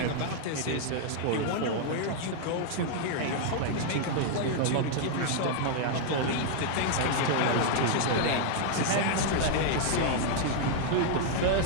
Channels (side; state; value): both; different; correlation 0.00